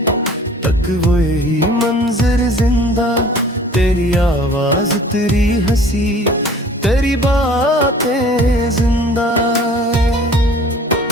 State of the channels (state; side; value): normal; both; correlation 0.49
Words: तक वही मंजर जिंदा, तेरी आवाज तेरी हंसी तेरी बातें जिंदा।